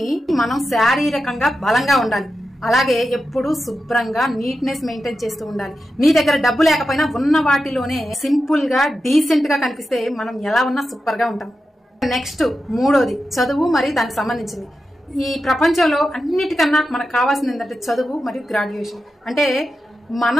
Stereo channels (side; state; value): both; normal; correlation 0.90